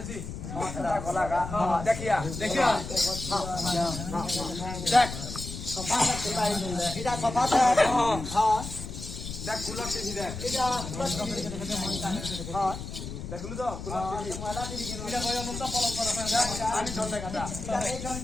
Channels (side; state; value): left; noise; rumble, 8 dB below the sound